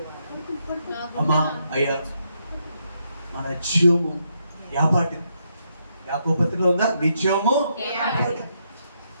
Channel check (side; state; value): both; inverted; correlation -0.79